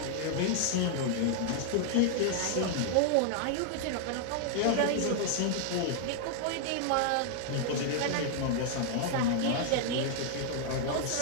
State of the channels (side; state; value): both; different; correlation 0.00